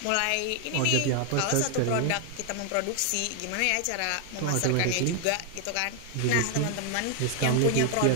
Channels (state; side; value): different; both; correlation 0.00